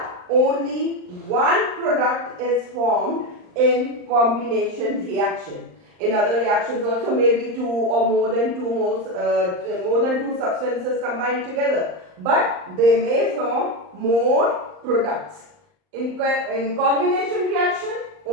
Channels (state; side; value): late; left; 39 ms